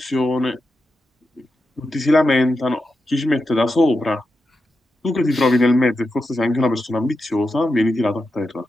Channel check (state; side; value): normal; both; correlation 0.88